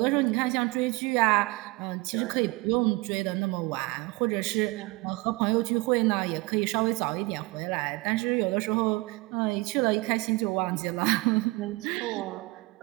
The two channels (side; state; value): left; quieter; 23.6 dB